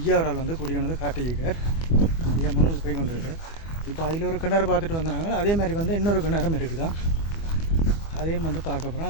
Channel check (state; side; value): late; right; 24 ms